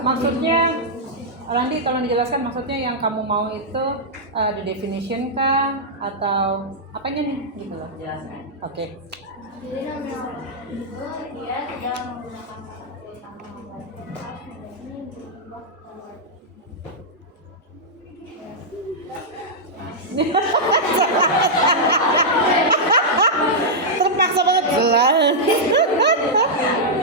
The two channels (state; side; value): normal; both; correlation -0.08